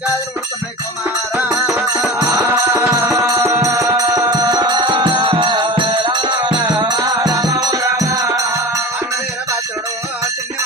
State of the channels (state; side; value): normal; both; correlation 0.32